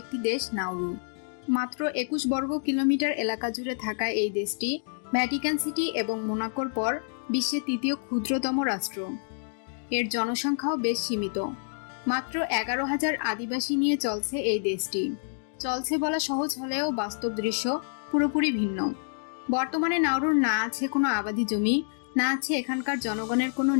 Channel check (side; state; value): right; silent; digital silence